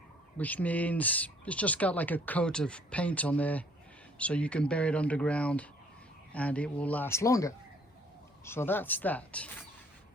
which means it's just got like a coat of paint on there, so you can bury it underground and it will last longer. So that's that.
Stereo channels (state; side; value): normal; both; correlation 0.60